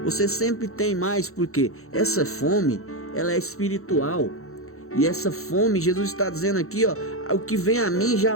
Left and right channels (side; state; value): right; late; 0.63 ms